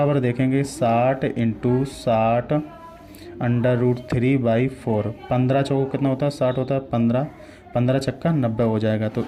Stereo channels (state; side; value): identical; both; correlation 1.00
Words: देखेंगे 60 इंटू 60 अंडर रूट 3 बाई 4, 15 चौको कितना होता है 60 होता है, 15 15 छक्का 90 हो जाएगा। तो